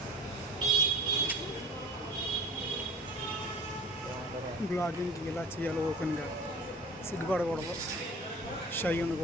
బ్లాగింగ్ ఇలా చేయాలి, ఓపెన్గా, సిగ్గుపడకూడదు, షై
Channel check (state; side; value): normal; both; correlation 0.42